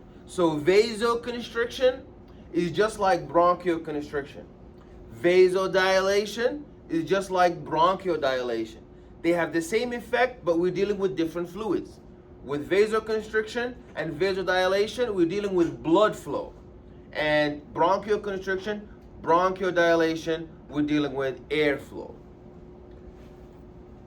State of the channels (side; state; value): both; identical; correlation 1.00